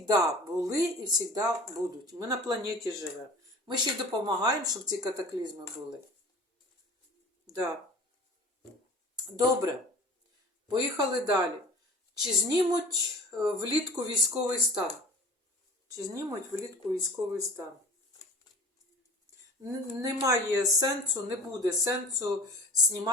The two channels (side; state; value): both; normal; correlation 0.41